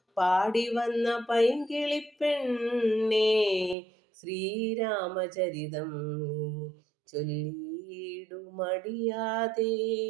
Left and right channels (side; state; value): left; drops out; at 3.8 s